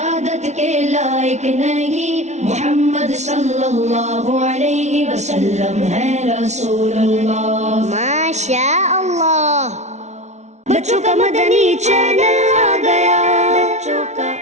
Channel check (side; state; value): left; late; 0.32 ms